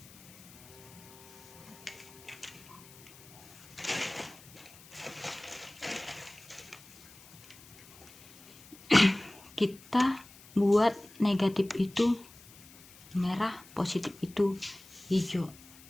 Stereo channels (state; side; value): noise; left; hiss, 21 dB below the sound